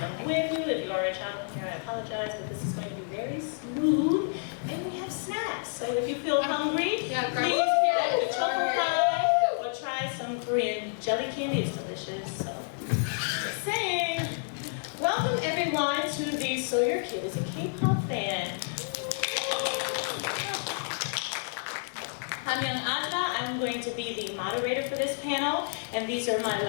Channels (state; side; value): silent; right; digital silence